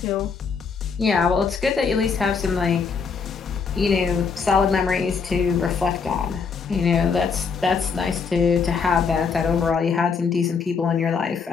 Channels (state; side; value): quieter; right; 5.6 dB